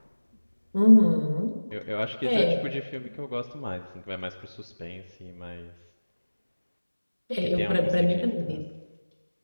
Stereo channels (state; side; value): inverted; both; correlation -1.00